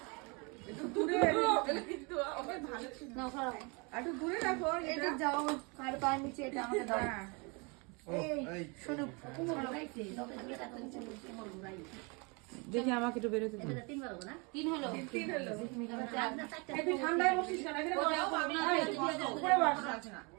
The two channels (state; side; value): quieter; left; 30.9 dB